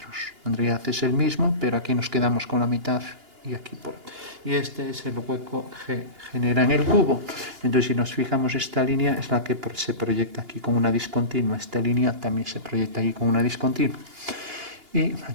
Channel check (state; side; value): late; left; 2.8 ms